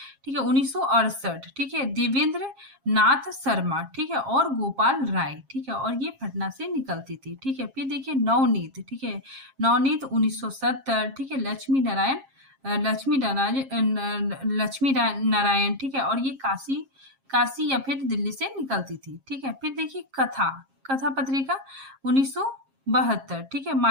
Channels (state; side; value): late; left; 7.4 ms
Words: ठीक है, 1968, ठीक है, देवेंद्र नाथ शर्मा, ठीक है, और गोपाल राय, ठीक है, और ये पटना से निकलती थी, ठीक है। फिर देखिए नवनीत, ठीक है, नवनीत 1970, ठीक है, लक्ष्मी नारायण, ठीक है, और ये काशी या फिर दिल्ली से निकलती थी, ठीक है। फिर देखिए कथा पत्रिका 1972, ठीक है,